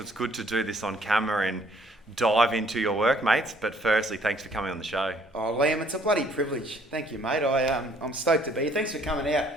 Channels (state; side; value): normal; both; correlation 0.62